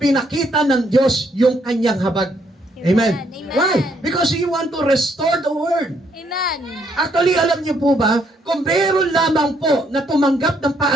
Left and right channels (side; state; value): both; normal; correlation 0.71